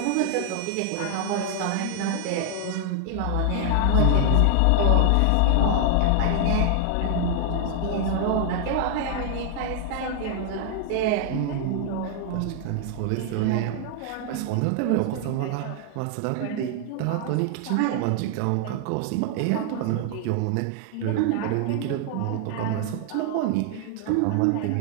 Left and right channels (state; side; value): different; both; correlation 0.00